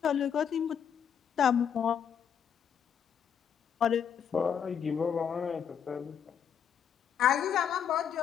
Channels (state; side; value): quieter; right; 8.1 dB